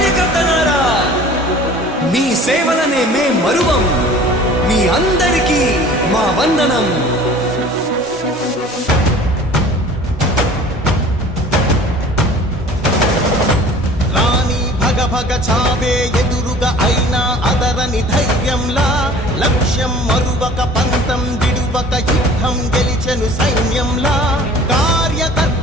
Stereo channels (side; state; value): both; normal; correlation 0.46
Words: మీ సేవలనే మే మరువం. మీ అందరికీ మా వందనం. భగ చావే ఎదురుగా అయినా అదరని ధైర్యంలా, లక్ష్యం మరువక పంతం విడువక యుద్ధం గెలిచెను సైన్యంలా.